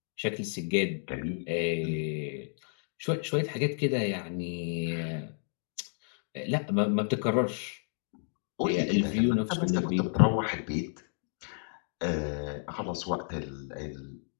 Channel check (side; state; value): right; silent; digital silence